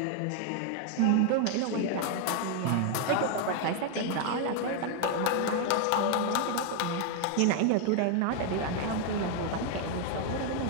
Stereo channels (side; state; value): both; different; correlation 0.00